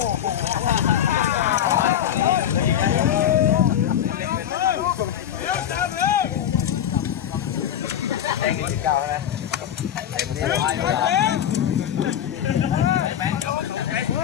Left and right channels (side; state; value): right; quieter; 10.1 dB